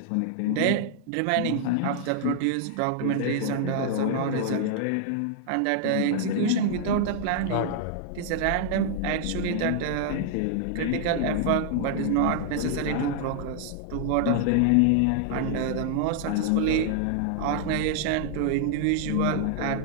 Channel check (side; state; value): both; different; correlation 0.00